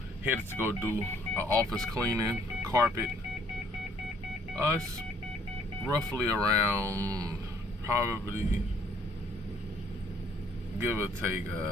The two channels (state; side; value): normal; both; correlation 0.63